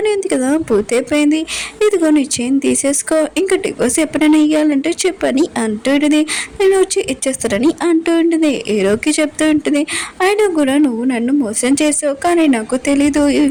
ఉంది కదా పూర్తయిపోయింది, ఇదిగో నీ చైన్ తీసేసుకో, ఇంకా డివోర్స్ ఎప్పుడైనా ఇవ్వాలంటే చెప్పని అంటూ ఉంటుంది, నేను వచ్చి ఇచ్చేస్తానని అంటూ ఉంటుంది. హీరోకి చెప్తూ ఉంటుంది, అయినా కూడా నువ్వు నన్ను మోసం చేసావు, కానీ నాకు తెలీదు ఈ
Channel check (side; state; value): both; identical; correlation 1.00